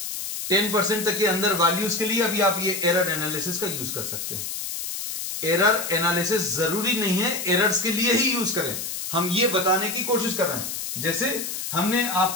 10% तक के अंदर वैल्यूज के लिए अभी आप ये एरर एनालिसिस का यूज कर सकते हैं. एरर एनालिसिस जरूरी नहीं है एरर्स के लिए ही यूज करें, हम ये बताने की कोशिश कर रहे हैं. जैसे हमने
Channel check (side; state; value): left; noise; hiss, 5 dB below the sound